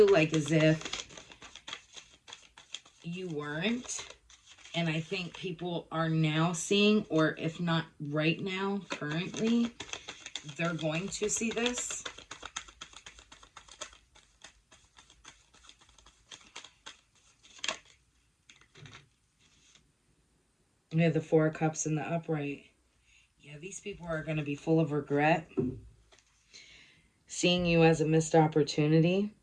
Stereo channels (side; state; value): both; identical; correlation 1.00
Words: like as if you weren't. And I think people are now seeing, or if not right now, currently, they're going to see this. We have the Four of Cups in the upright. Yeah, these people are going to be full of regret. Seeing you as a missed opportunity.